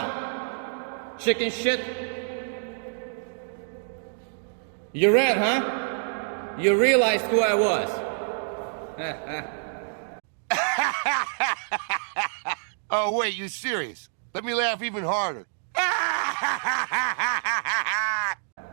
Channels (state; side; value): silent; left; digital silence